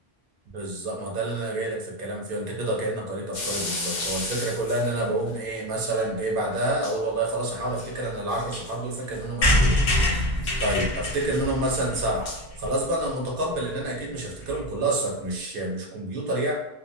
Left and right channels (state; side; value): normal; both; correlation 0.15